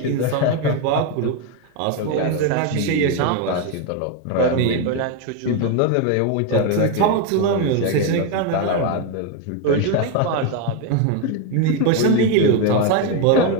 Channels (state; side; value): different; both; correlation 0.02